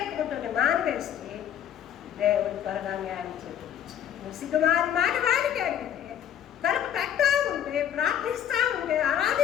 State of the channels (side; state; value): right; quieter; 9.9 dB